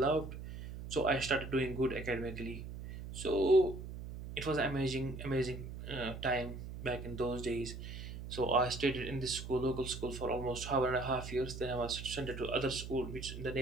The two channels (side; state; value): right; noise; hum, 9 dB below the sound